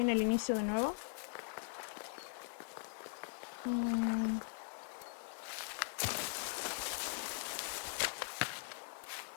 en el inicio de nuevo.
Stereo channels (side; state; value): right; silent; 51 dB below the other